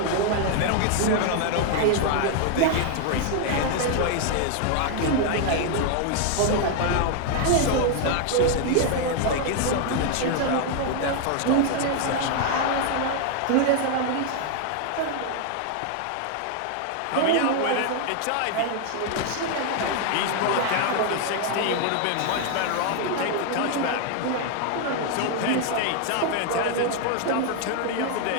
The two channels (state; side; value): different; both; correlation 0.00